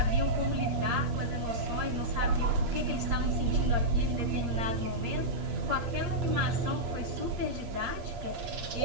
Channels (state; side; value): late; left; 8.6 ms